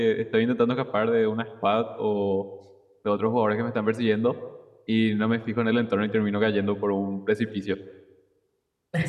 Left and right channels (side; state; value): both; identical; correlation 1.00